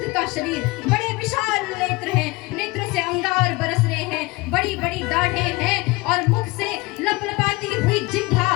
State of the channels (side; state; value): right; quieter; 23.1 dB